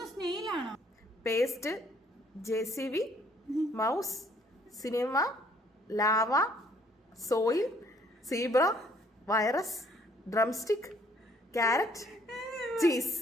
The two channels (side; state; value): both; normal; correlation 0.63